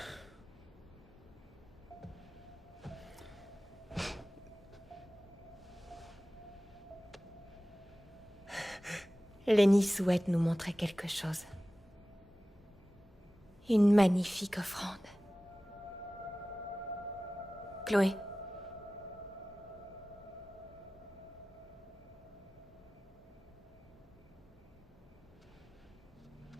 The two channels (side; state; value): both; normal; correlation 0.97